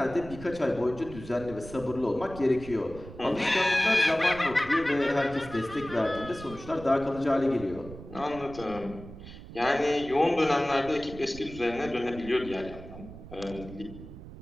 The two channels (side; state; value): right; noise; rumble, 14 dB below the sound